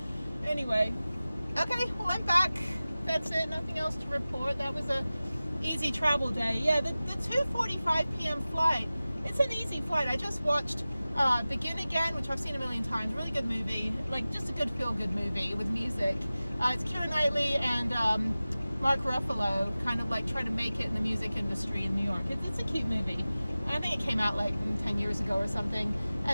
Anyway. Okay, well, I'm back. That's it. Nothing else to report. That was a easy travel day. Yeah, the 2:45 p.m. flight. It's an easy flight. I just watched Begin Again, which I've seen a million times. Really good movie. Like, just a good feel-good movie with music. It's Keira Knightley and Mark Ruffalo kind of like trying to make it in the music industry in New York. It's a cute movie. I think it came out like 10 years ago or something.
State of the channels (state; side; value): inverted; both; correlation -0.97